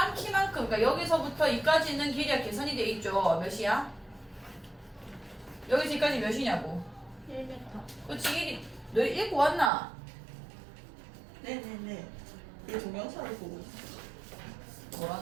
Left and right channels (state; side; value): drops out; left; at 9.7 s